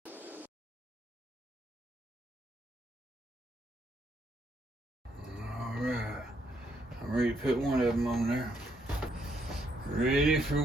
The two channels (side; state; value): both; normal; correlation 0.74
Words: All right, I'm ready to put one of them on there. Ready for